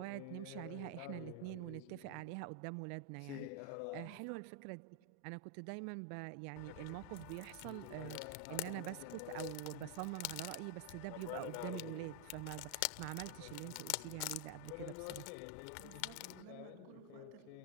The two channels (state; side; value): different; both; correlation 0.00